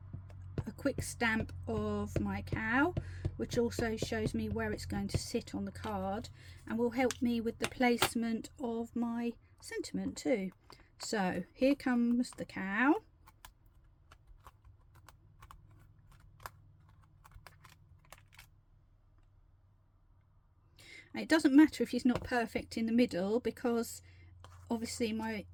a quick stamp of my cow, which also shows me where it's going to sit on the card and will help me with the placement of my sentiment too. So here comes the cow. It doesn't matter if he's not perfect in the middle, because obviously my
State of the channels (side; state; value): both; identical; correlation 1.00